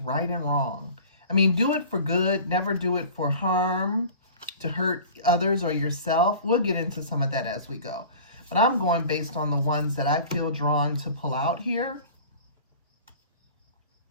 and wrong. I mean, do it for good. Never do it for harm, to hurt others or yourself. We'll get into some of that as we go. But I'm going based on the ones that I feel drawn to pull out here.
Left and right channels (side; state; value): both; inverted; correlation -0.41